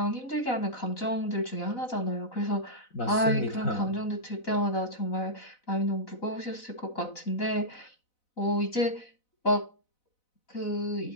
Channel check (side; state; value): right; late; 4.0 ms